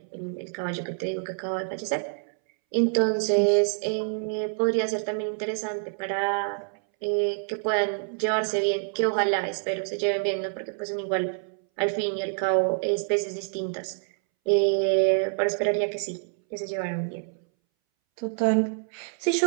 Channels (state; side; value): silent; left; 60 dB below the other